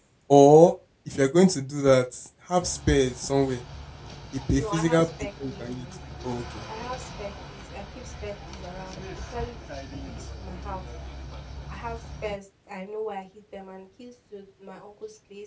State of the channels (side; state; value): both; identical; correlation 1.00